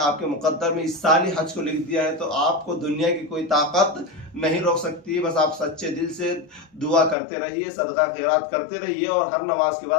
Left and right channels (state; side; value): drops out; right; at 7.2 s